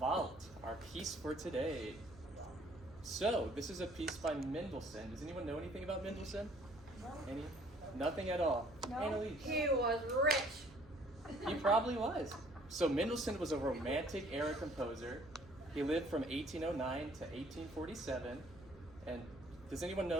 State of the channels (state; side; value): noise; right; hum, 22 dB below the sound